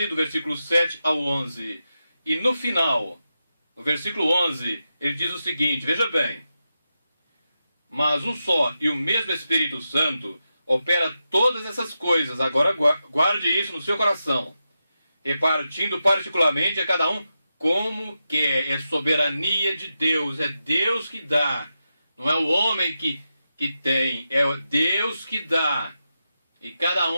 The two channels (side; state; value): both; inverted; correlation -0.89